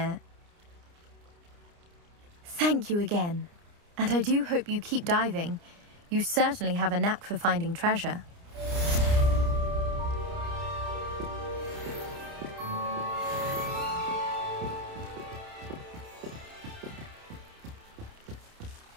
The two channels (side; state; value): left; late; 29 ms